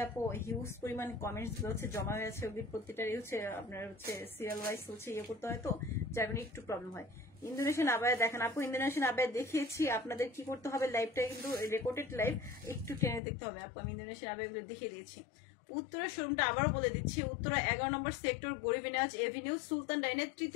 আপু হিউজ পরিমাণ কমেন্টস গুলো হচ্ছে জমা হয়ে আছে, ওগুলি প্রত্যেকটারই হচ্ছে আপনার হচ্ছে সিরিয়াল ওয়াইজ হচ্ছে ইয়ে করতে হয়, তো যার মানে একটু প্রবলেম হয়। ইন্দোনেশিয়ান আবায়া দেখেন আপু, ইন্দোনেশিয়ান আবায়া দেখিয়েছি। আপনাদের কি করতে হবে, লাইভটা কিন্তু রেকর্ডেড লাইভ, একটু টেনে দেখতে হবে আপু। আমি ইন্দোনেশিয়ান আবায়া গুলো দেখিয়ে দিয়েছি। উত্তরা শোরুমটা আবারও বলে দিচ্ছি, উত্তরা 11 নম্বর সেক্টর গরিবে নেয়াজ এভিনিউ সুলতান ডাইনের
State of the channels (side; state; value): right; drops out; at 13.2 s